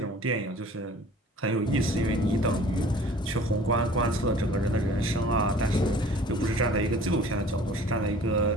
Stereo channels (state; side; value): normal; both; correlation 0.48